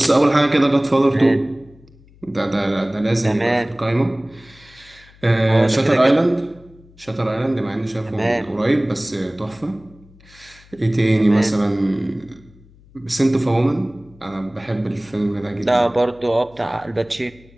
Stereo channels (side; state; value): left; noise; hum, 26 dB below the sound